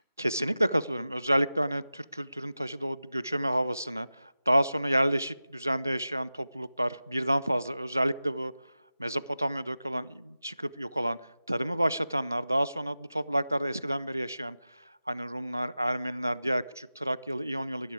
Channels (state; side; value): inverted; both; correlation -0.94